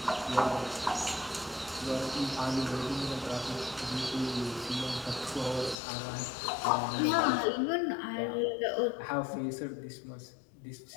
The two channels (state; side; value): drops out; right; at 5.8 s